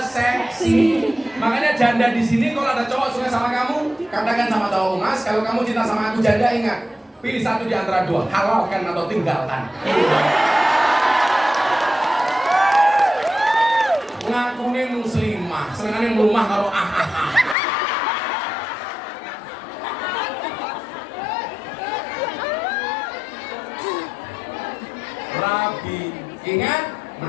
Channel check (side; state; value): right; drops out; at 17.6 s